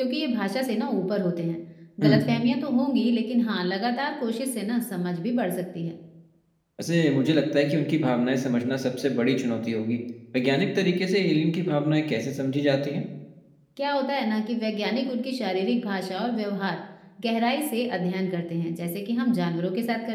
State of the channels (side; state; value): both; identical; correlation 1.00